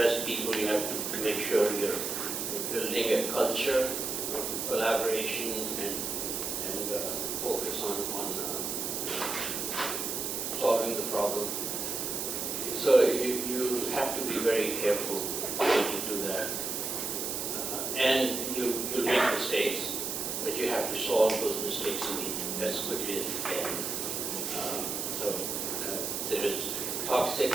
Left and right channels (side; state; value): right; noise; hiss, 2 dB below the sound